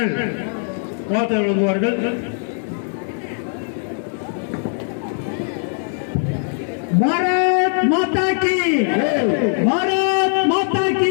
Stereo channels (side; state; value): right; silent; 56 dB below the other